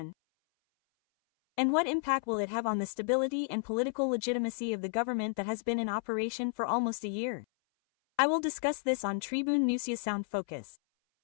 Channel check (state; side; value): silent; right; 56 dB below the other